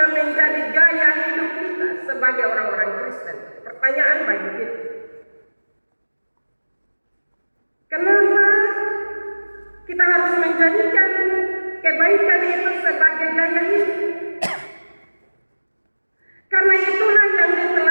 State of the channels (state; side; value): inverted; both; correlation -1.00